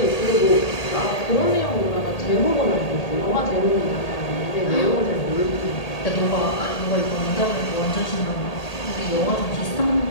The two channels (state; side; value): late; right; 1.8 ms